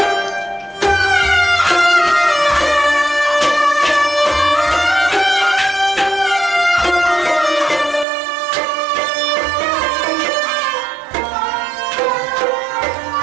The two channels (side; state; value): left; drops out; at 8.1 s